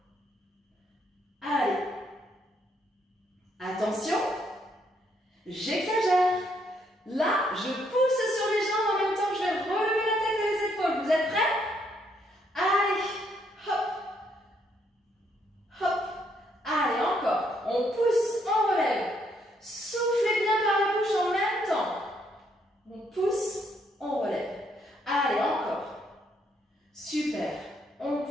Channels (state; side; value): normal; both; correlation 0.72